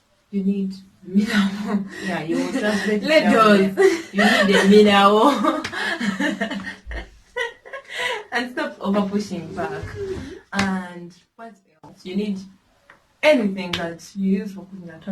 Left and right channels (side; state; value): both; identical; correlation 1.00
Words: You need mineral. You will translate it. You need the mineral. And stop over pushing back. And what else? You need anything that you use for cooking at